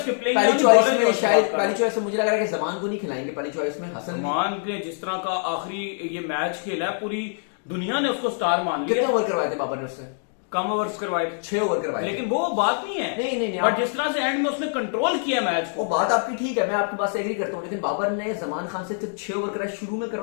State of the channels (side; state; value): right; silent; 62 dB below the other